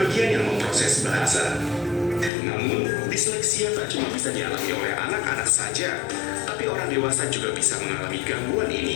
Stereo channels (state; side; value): drops out; right; at 2.3 s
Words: yang memproses bahasa. Namun, disleksia tak cuma bisa dialami oleh anak-anak saja, tapi orang dewasa juga bisa mengalami gangguan